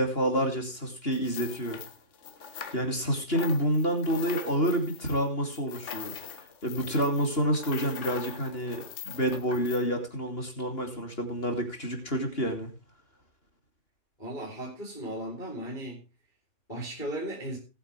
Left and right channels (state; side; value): late; right; 2.9 ms